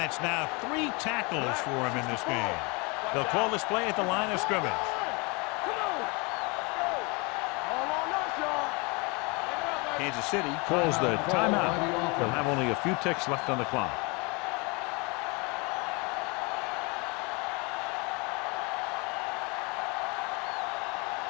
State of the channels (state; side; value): quieter; right; 29.2 dB